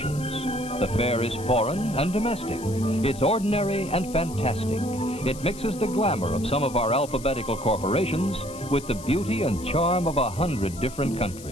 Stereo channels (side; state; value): left; noise; hiss, 16 dB below the sound